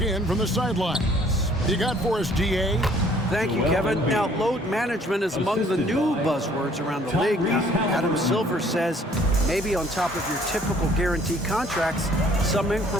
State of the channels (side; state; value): both; normal; correlation 0.58